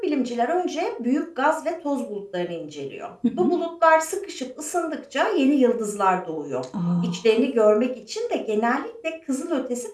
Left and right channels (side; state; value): both; identical; correlation 1.00